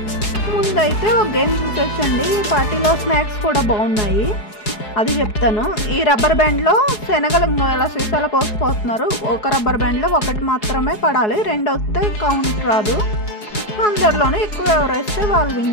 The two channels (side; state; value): right; late; 4.7 ms